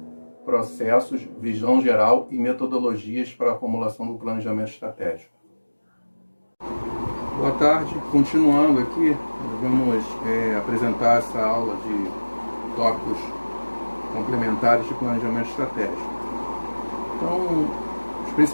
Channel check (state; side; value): inverted; both; correlation -1.00